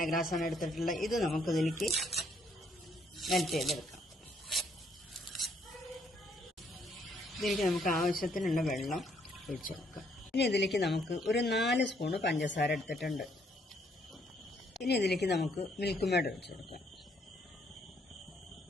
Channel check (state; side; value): normal; both; correlation 0.69